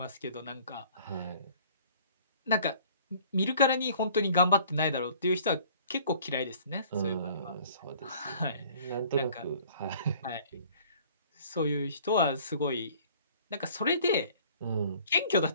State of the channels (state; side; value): inverted; both; correlation -0.52